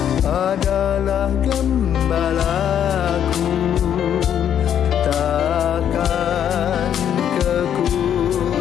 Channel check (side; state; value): right; quieter; 9.5 dB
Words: adalah gembalaku, takkan